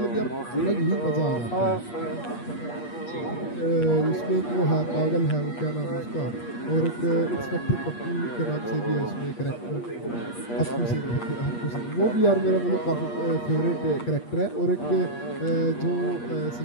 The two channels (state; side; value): late; right; 8.4 ms